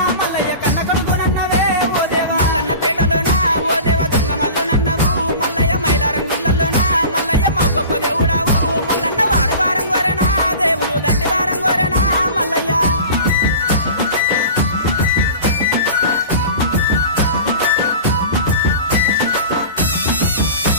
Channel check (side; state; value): both; inverted; correlation -0.37